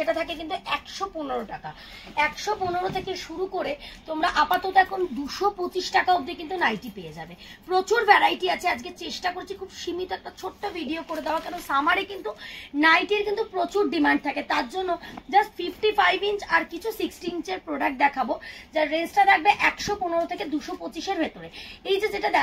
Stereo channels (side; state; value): both; identical; correlation 1.00